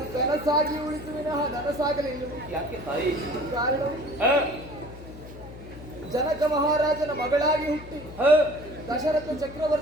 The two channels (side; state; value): left; noise; hum, 15 dB below the sound